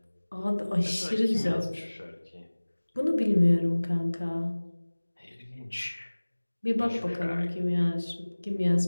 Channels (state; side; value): inverted; both; correlation -1.00